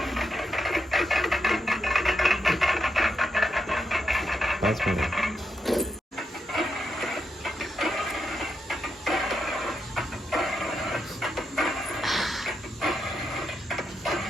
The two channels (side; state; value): both; normal; correlation 0.83